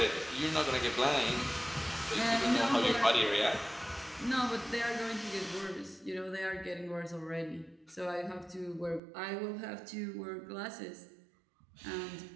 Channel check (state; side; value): drops out; left; at 9.0 s